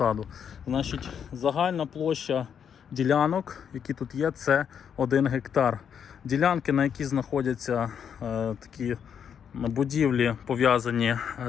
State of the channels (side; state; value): right; quieter; 7.9 dB